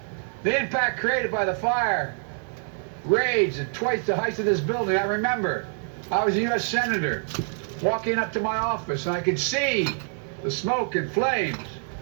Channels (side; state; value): left; silent; 61 dB below the other